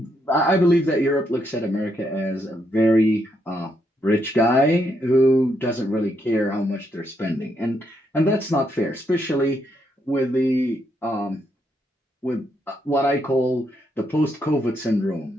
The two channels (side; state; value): both; normal; correlation 0.77